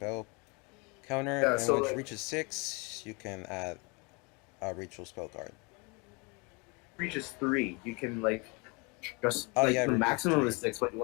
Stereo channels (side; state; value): right; quieter; 30.1 dB